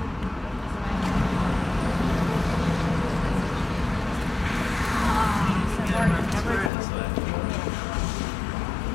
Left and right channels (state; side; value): drops out; right; at 6.7 s